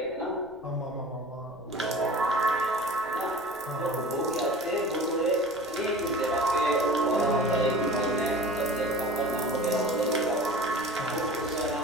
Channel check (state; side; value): noise; left; rumble, 27 dB below the sound